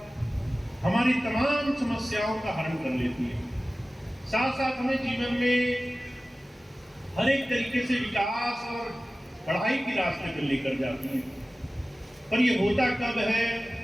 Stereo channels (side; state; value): both; normal; correlation 0.97